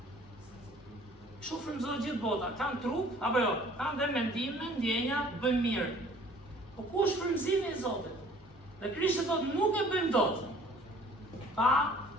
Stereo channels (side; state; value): both; normal; correlation 0.53